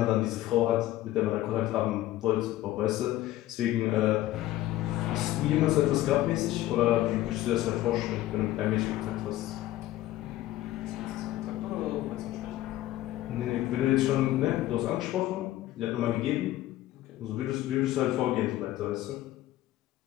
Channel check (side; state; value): right; quieter; 15.1 dB